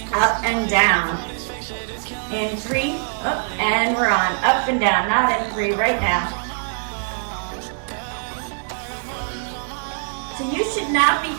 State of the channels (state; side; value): silent; left; digital silence